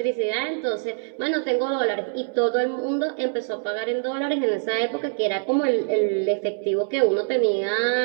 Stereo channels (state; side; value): silent; left; 63 dB below the other